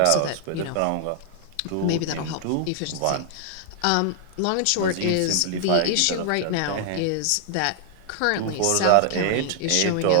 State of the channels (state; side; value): different; both; correlation 0.00